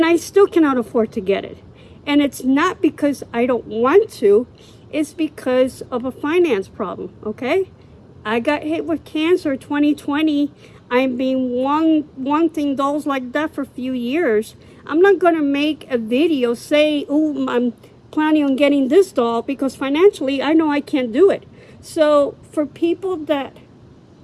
I still cannot afford to get it. And it's not because I don't want to, it's because of a finance problem, okay? I got hit with cancer 2020. I've been wanting dolls like that for a few years. I'm not gonna make a video say, oh, I'm planning on getting this doll, because financially I know I can't do it. So for people that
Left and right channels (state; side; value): identical; both; correlation 1.00